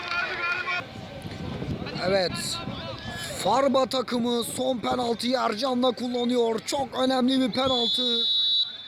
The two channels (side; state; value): both; identical; correlation 1.00